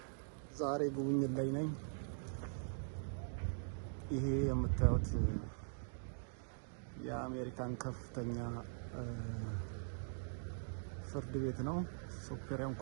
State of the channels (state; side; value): silent; left; digital silence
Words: ዛሬ ጉብኝት ላይ ነኝ። ይሄ የምታዩት የአሜሪካን ከፍተኛ ፍርድ ቤት ነው። ሱፕሪም